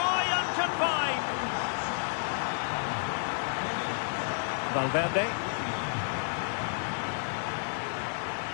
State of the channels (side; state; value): right; silent; digital silence